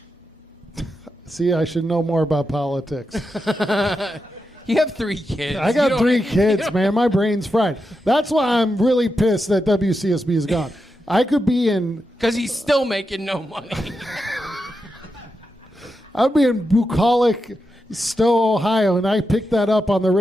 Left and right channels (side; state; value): both; normal; correlation 0.87